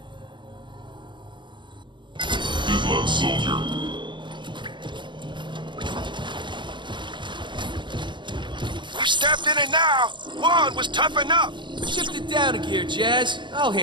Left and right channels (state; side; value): late; left; 0.23 ms